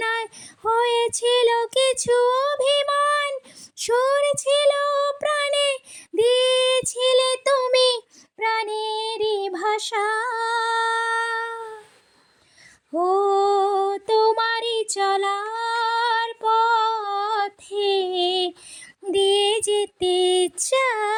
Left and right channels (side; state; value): both; identical; correlation 1.00